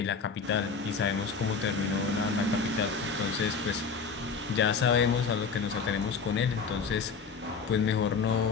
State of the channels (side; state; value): right; quieter; 5.3 dB